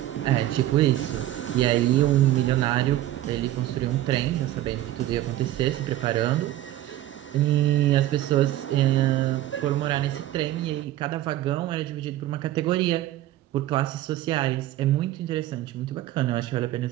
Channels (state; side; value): quieter; left; 14.3 dB